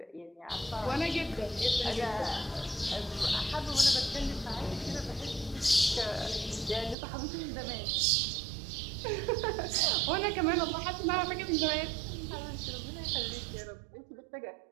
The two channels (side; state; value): left; drops out; at 7.0 s